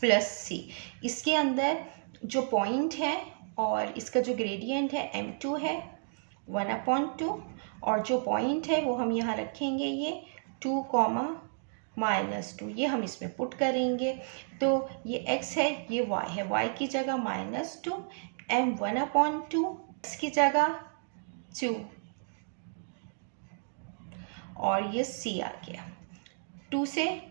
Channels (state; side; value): silent; left; digital silence